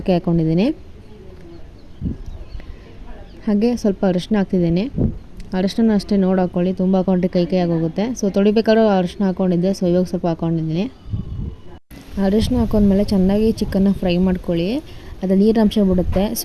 ಹಾಕ್ಕೊಂಡಿದ್ದೀನಿ. ಹಾಗೆ ಸ್ವಲ್ಪ ಅರಿಶಿನ ಹಾಕ್ತಿದ್ದೀನಿ. ಅರಿಶಿನ ಅಷ್ಟೇ ನೋಡಿ ಹಾಕ್ಕೊಳ್ಳಿ, ತುಂಬ ಹಾಕ್ಕೊಂಡ್ರೆ ಕೈ ಆಗೋಗುತ್ತೆ. ಸೊ ತೊಳಿಬೇಕಾದ್ರೂ ಅರಿಶಿನ ಹಾಕ್ಕೊಂಡಿದ್ದೆ. ಸೊ ಇವಾಗ ಸ್ವಲ್ಪ ಹಾಕ್ಕೊಂಡಿದ್ದೀನಿ. ಅರಿಶಿನ ಹಾಕೊಂಡ್ಮೇಲೆ ಚೆನ್ನಾಗಿ ಚಿಕನ್ನ ಫ್ರೈ ಮಾಡ್ಕೊಳ್ಳಿ. ಅದು ನೀರಿನಂಶ ಬಿಡುತ್ತೆ.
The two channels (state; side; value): identical; both; correlation 1.00